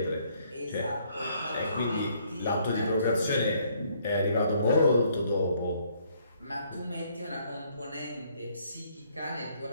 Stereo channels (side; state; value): both; inverted; correlation -0.66